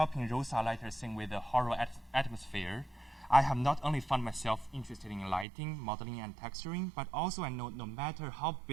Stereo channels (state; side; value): drops out; left; at 5.5 s